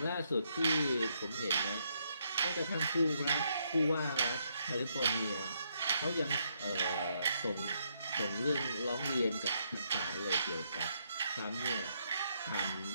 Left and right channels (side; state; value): both; inverted; correlation -0.75